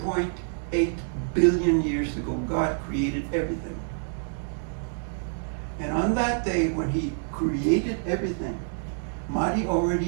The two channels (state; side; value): silent; left; digital silence